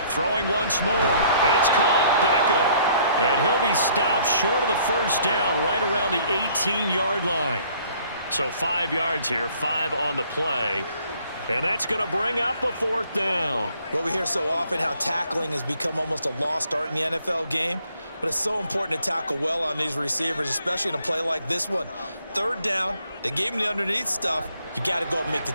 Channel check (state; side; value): inverted; both; correlation -0.61